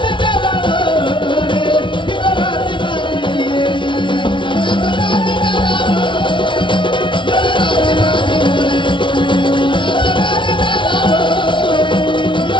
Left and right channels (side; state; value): right; late; 0.24 ms